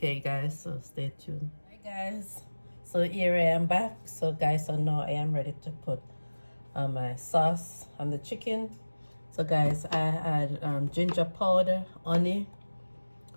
guys, so stay tuned. Hi guys, so here I am back. So guys, so now I am ready to put my sauce on the chicken. So guys, I add ginger powder, honey,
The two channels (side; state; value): both; inverted; correlation -1.00